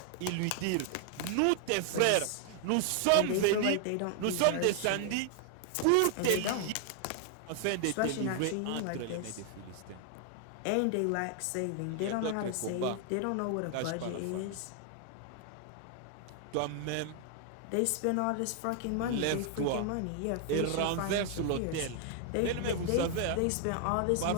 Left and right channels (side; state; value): both; different; correlation 0.00